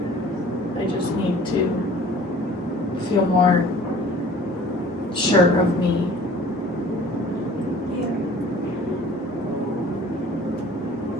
I just need to feel more sure of me. Yeah.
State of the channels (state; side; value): normal; both; correlation 0.49